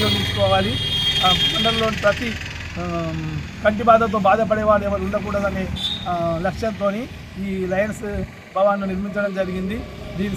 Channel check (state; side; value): identical; both; correlation 1.00